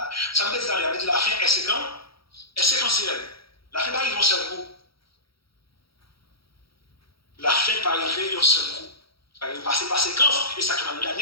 Ça veut dire que la fin est séquentielle. Est séquentielle. La fin va arriver en seul coup. La fin va arriver en seul coup. Ça va passer par séquence. Et ça qui va nous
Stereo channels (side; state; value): right; late; 0.75 ms